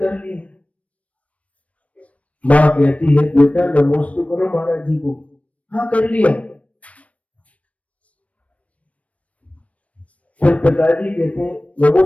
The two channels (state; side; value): late; right; 0.065 ms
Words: लिए। माँ कहती है बेटा नमस्ते करो महाराज जी को। हाँ कर लिया। फिर पिताजी कहते हैं